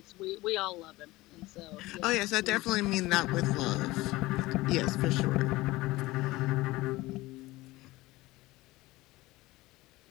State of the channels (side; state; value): right; quieter; 19.5 dB